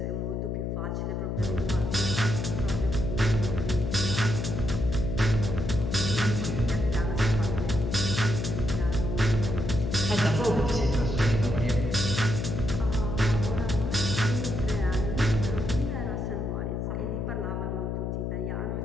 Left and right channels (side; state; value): left; noise; hum, 2 dB below the sound